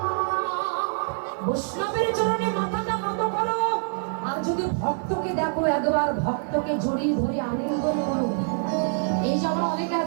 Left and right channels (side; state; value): left; silent; digital silence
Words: বৈষ্ণবের চরণে মাথাটা নত করো। আর যদি ভক্তকে দেখো, একবার ভক্তকে জড়িয়ে ধরে আলিঙ্গন করো। এই যে আমরা অনেকে